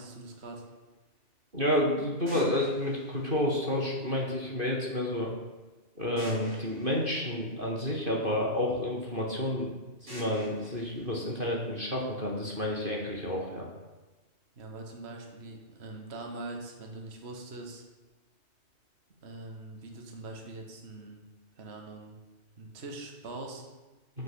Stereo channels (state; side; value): late; left; 2.5 ms